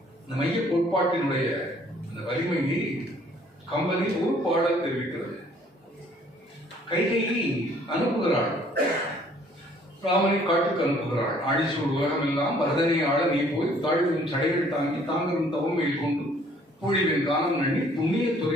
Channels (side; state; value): both; normal; correlation 0.59